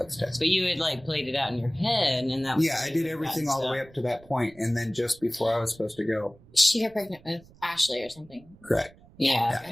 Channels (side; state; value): right; noise; rumble, 25 dB below the sound